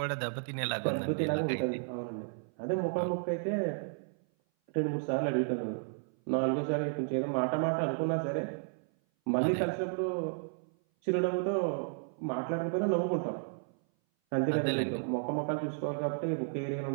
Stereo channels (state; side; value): silent; left; 56 dB below the other